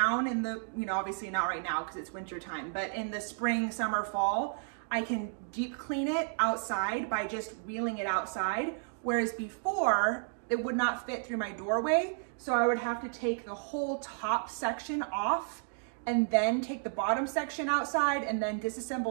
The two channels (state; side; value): silent; left; 56 dB below the other